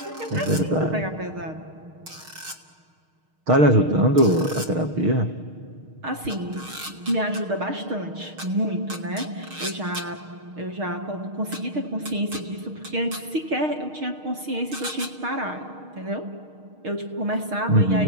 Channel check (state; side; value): late; left; 6.5 ms